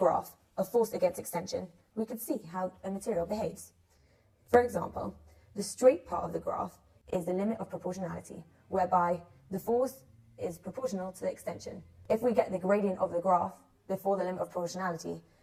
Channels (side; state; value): both; identical; correlation 1.00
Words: of force against extension, we can see how a material behaves. For example, the straight part of the graph is the limit of proportionality, whereby the force is proportional to the extension. If we get the gradient of the graph before the limit of proportionality,